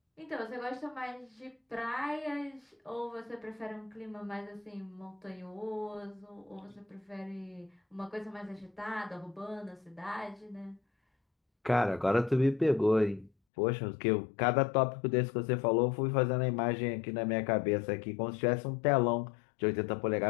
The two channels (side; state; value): right; drops out; at 13.3 s